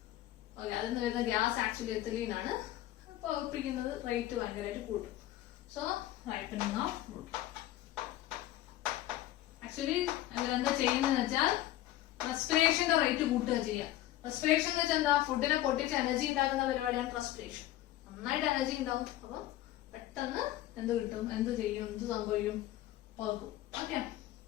ഓക്കെ, അതിൽ നിന്ന് വരുന്ന ഗ്യാസ് ആക്ച്വലി എഥിലീൻ ആണ്. പഴുപ്പിക്കുന്നത് റേറ്റ് ഭയങ്കരമായിട്ട് കൂട്ടും. So ripening of fruit. Actually അവരെന്താ ചെയ്യുന്നതെന്ന് വെച്ചാൽ റെസ്പിറേഷന്റെ റേറ്റ് കൂട്ടുക ചെയ്യുക. റെസ്പിറേഷൻ എന്ന് വെച്ചാൽ എന്താ? ഫുഡിനെ പൊട്ടിച്ച് എനർജി ഉണ്ടാക്കുന്ന പരിപാടിയാണ് റെസ്പിറേഷൻ. നന്നായിട്ട് എനർജി ഉണ്ടാവും. അപ്പൊ പെട്ടെന്ന് എന്ത് കിട്ടും? എന്ത് ചെയ്യും? എന്ത് സംഭവിക്കും? പഴുക്കും. ഓക്കെ,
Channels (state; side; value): quieter; right; 14.4 dB